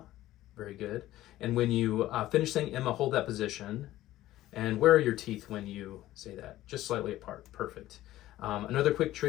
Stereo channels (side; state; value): right; quieter; 15.0 dB